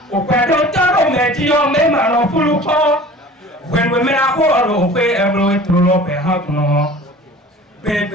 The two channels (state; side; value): normal; both; correlation 0.43